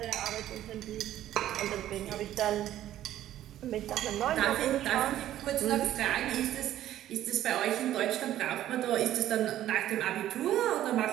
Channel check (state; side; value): quieter; left; 12.7 dB